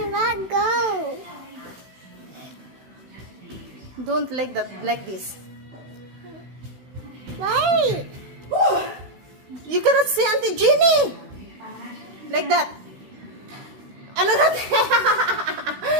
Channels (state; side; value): late; left; 16 ms